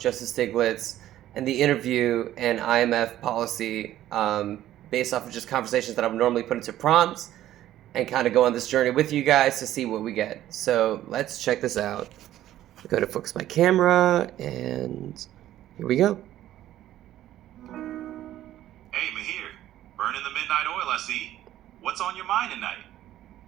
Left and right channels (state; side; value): quieter; left; 13.1 dB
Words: Stiglitz and the interview and IMF policy based off of just conversations that I would normally put into prompts and kind of go on this journey with you guys to see what we get. So let's check this out. I go to focus my camera, and here we go. Hey, Mahir, burning the midnight oil, I see. What's on your mind tonight?